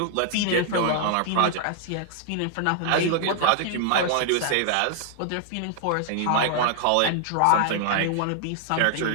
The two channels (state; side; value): different; both; correlation -0.01